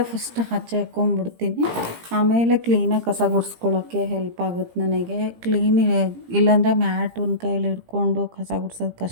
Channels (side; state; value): left; late; 17 ms